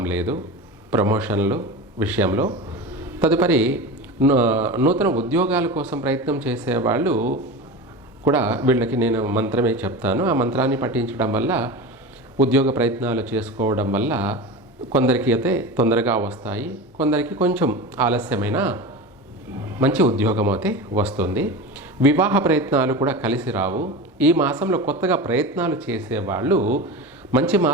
లేదు ప్రమోషన్లు విషయంలో. తదుపరి నూతన ఉద్యోగాల కోసం ప్రయత్నం చేసేవాళ్ళు కూడా వీళ్ళకి నేను మంత్రమే చెప్తాను. ఆ మంత్రాన్ని పఠించడం వల్ల, ఉద్యోగ ప్రయత్నాలు చేసుకోవడం వల్ల కొందరికి అయితే తొందరగా వస్తాయి, కొందరికి కొంచెం ఆలస్యమైన మంచి ఉద్యోగం అయితే వస్తుంది. వివాహ ప్రయత్నాలు కూడా కలిసి రావు. ఈ మాసంలో కొత్తగా ప్రయత్నాలు చేసేవాళ్ళు మంచి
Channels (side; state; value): both; normal; correlation 0.27